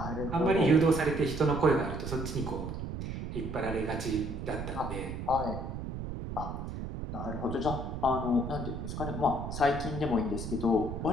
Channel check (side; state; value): right; noise; rumble, 6 dB below the sound